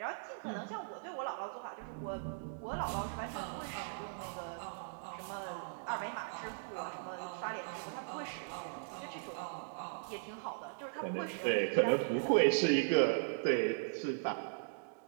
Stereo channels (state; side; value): silent; left; digital silence